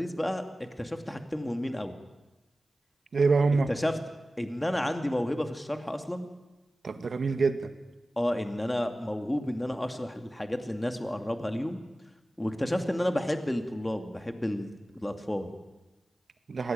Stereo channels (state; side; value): normal; both; correlation 0.95